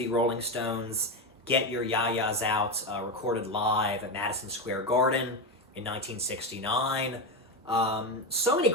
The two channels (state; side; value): normal; both; correlation 0.14